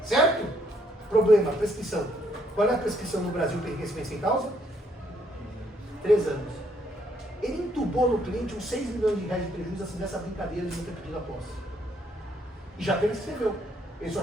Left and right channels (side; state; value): both; normal; correlation 0.70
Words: certo? Problema, prescrição. Qual é a prescrição no Brasil para enriquecimento sem causa? 3 anos. Ele entubou no cliente uns 6 milhões de reais de prejuízo assim dessa brincadeira de não ter pedido a posse. E já prescreveu. Ele só